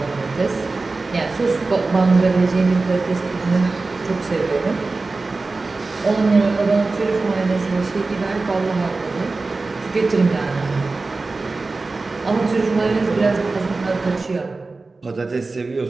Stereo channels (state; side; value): quieter; left; 3.6 dB